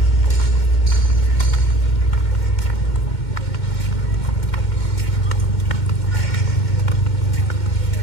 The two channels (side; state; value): right; late; 2.1 ms